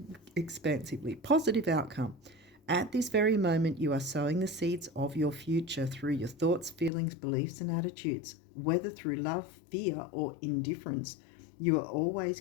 expansively. Positive outcome. At this very moment, you are sowing the seeds of your future through your thoughts, feelings, beliefs, and attitudes. Whether through love, fear, or indifference, you are always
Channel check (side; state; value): right; drops out; at 6.9 s